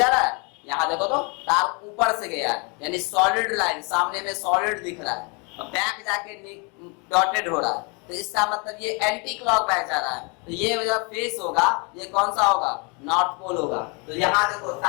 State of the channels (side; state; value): right; quieter; 32.2 dB